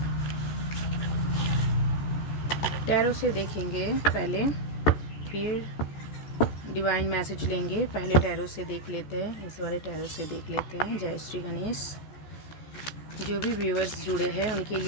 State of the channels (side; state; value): right; late; 14 ms